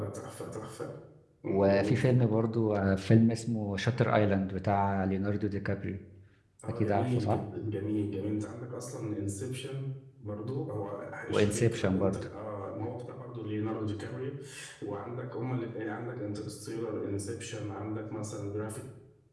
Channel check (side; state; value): both; identical; correlation 1.00